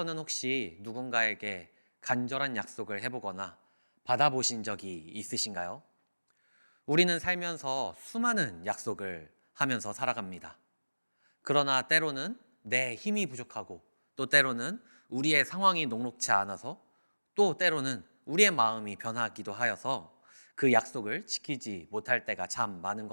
혹시 누군가에게 간절한 약속을 해보거나 받아보신 적이 있으신가요? 우리는 살면서 수많은 약속을 하면서 살아갑니다. 그러나 때로는 내 힘이 부족하고 또 때로는 우리의 상황이 녹록치 않아서 또 때로는 우리의 마음이 변하기도 하여서 그 약속을 지키지 못할 때가 참 많은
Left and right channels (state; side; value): inverted; both; correlation -1.00